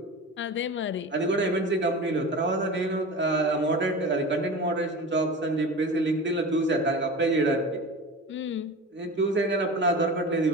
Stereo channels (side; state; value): both; normal; correlation 0.31